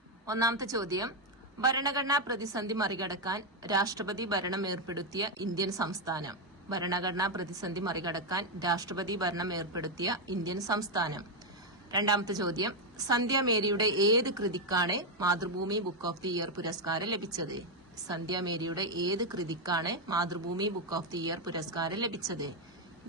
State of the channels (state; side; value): normal; both; correlation 0.03